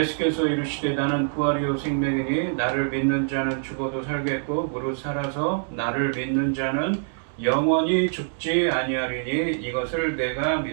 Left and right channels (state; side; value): silent; left; 62 dB below the other